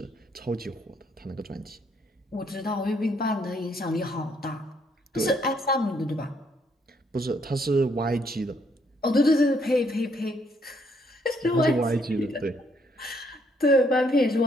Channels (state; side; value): normal; both; correlation 0.70